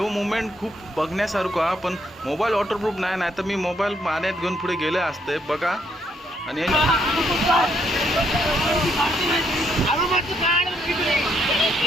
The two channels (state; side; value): normal; both; correlation 0.73